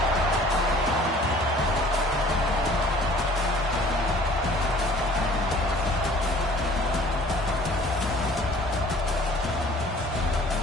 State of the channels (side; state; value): both; normal; correlation 0.51